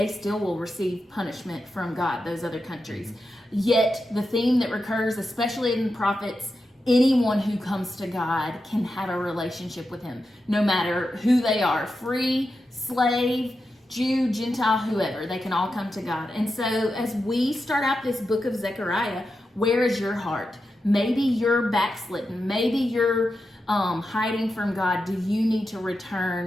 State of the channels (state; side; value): normal; both; correlation 0.89